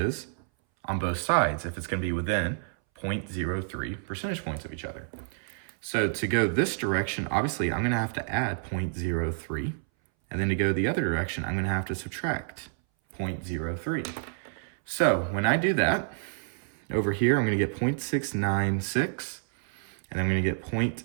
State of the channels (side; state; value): left; silent; 59 dB below the other